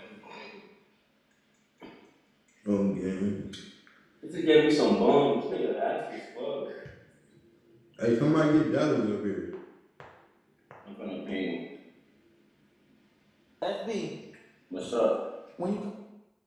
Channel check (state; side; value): identical; both; correlation 1.00